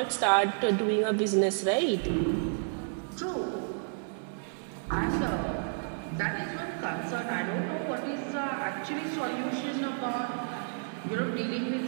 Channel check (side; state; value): left; silent; digital silence